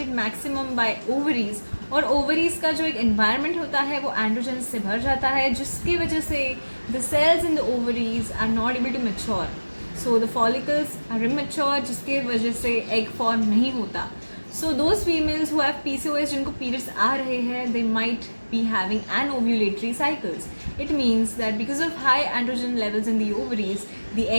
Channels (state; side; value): inverted; both; correlation -1.00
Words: maximum by ovaries, और ovaries का जो एक एनवायरनमेंट होता है वो एंड्रोजन्स से भर जाता है, जिसकी वजह से the cells in the ovaries are not able to mature. So the follicles are immature, जिसके वजह से एग फॉर्म नहीं होता. So those females who have PCOS, जिनको periods आ रहे हैं, they might be having anovulatory cycles. It means that because of high androgen levels in the ovaries, the